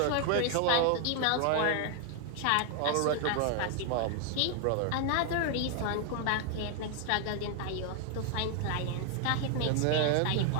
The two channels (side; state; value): both; different; correlation 0.00